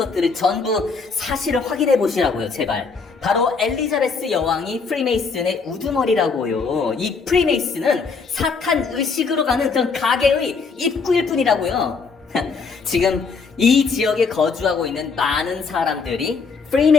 전부 사실을 확인해 보시라고요. 제발. 바로 엘리자베스 여왕이 프리메이슨의 우두머리라고요. 이 프리메이슨은 사탄 의식으로 가는 그런 가게의 입구일 뿐이라고요. 지금 이 지역에 거주하고 있는 많은 사람들이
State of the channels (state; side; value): quieter; right; 4.9 dB